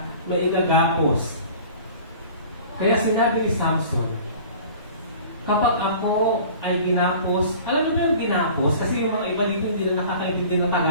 maigagapos. Kaya sinabi ni Samson, kapag ako ay ginapos, alam niyo ba yung ginapos? Kasi yung mga iba dito hindi na nakakaintindi ng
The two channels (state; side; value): inverted; both; correlation -0.44